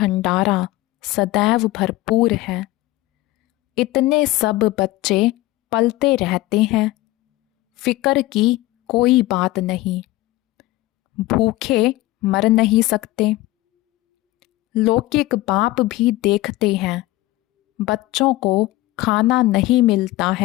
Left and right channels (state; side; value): quieter; right; 18.0 dB